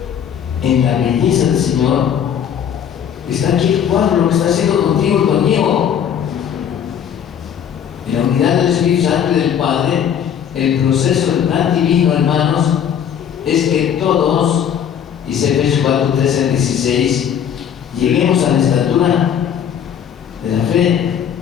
en la belleza del Señor, está aquí el cuadro, lo que está haciendo contigo y conmigo. En la unidad del Espíritu Santo y del Padre, el proceso del plan divino, hermanos, es que todos, dice Efesios 4:13-16, lleguemos a la estatura de la fe,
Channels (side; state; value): right; quieter; 8.6 dB